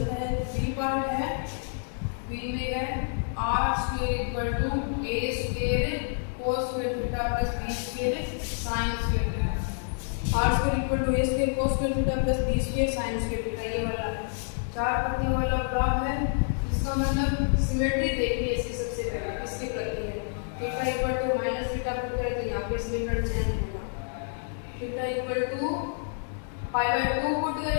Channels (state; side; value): silent; right; digital silence